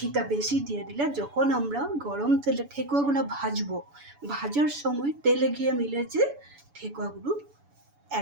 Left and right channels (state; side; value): late; left; 7.0 ms